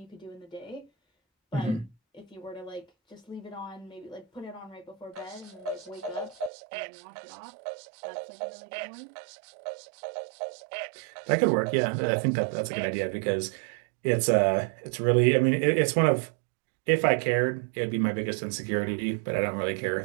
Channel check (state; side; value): drops out; left; at 6.5 s